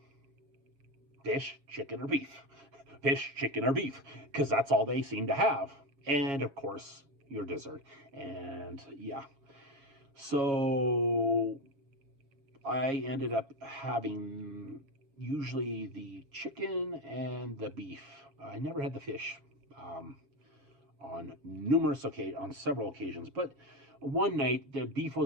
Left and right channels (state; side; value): late; left; 7.3 ms